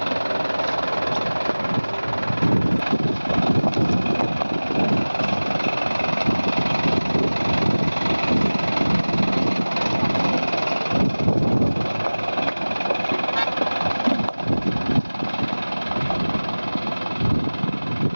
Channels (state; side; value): inverted; both; correlation -1.00